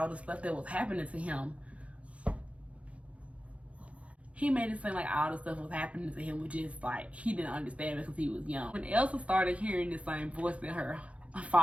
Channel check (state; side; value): late; left; 0.063 ms